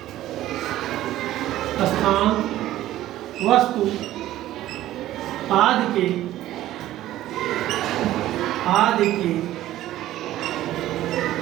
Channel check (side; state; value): left; quieter; 14.2 dB